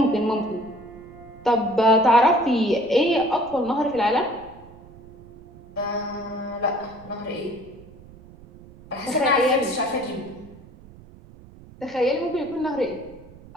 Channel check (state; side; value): noise; right; rumble, 21 dB below the sound